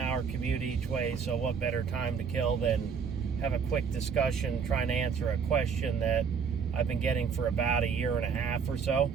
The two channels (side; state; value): left; quieter; 6.3 dB